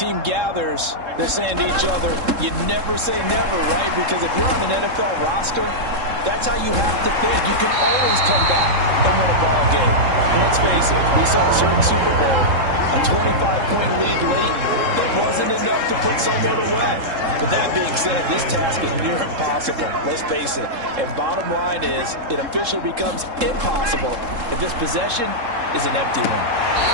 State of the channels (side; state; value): left; late; 3.7 ms